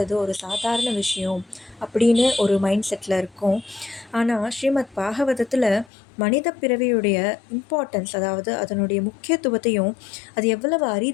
ஒரு சாதாரண விஷயம் அப்படின்னு ஒரு மைண்ட் செட்டில் இருக்கோம். ஆனால் ஸ்ரீமத் பாகவதத்தில் மனித பிறவியுடைய இம்பார்ட்டன்ஸ், அதாவது அதனுடைய முக்கியத்துவத்தையும் அது எவ்வளவு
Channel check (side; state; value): right; drops out; at 5.9 s